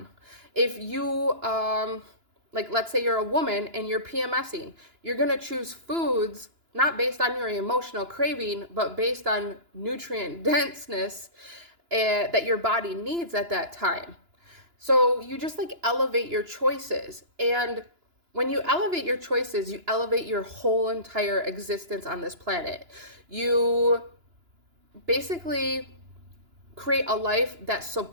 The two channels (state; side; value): late; left; 2.9 ms